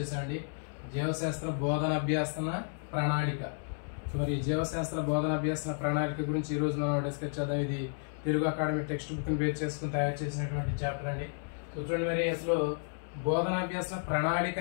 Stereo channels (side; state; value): right; silent; 56 dB below the other